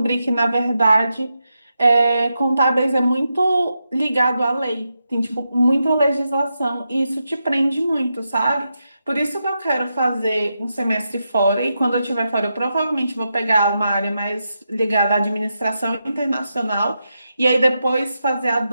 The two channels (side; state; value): both; inverted; correlation -0.86